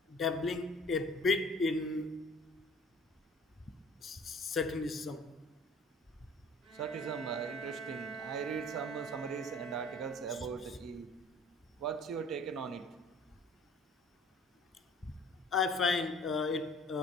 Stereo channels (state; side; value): normal; both; correlation 0.50